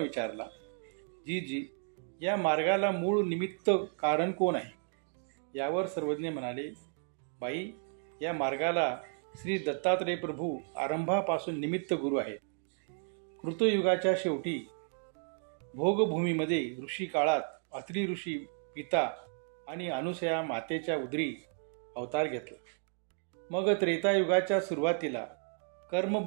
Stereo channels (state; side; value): silent; left; 55 dB below the other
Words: जी या मार्गाला मूळ निमित्त कारण कोण आहे? यावर सर्वज्ञ म्हणाले, बाई, या मार्गाला श्री दत्तात्रय प्रभू आरंभापासून निमित्त गुरु आहेत. कृतयुगाच्या शेवटी भोगभूमीमध्ये ऋषी काळात अत्रि ऋषी पिता आणि अनुसया मातेच्या उदरी अवतार घेतला. मग त्रेतायुगाच्या सुरुवातीला